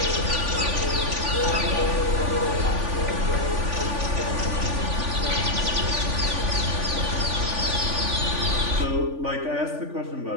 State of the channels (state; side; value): late; left; 3.5 ms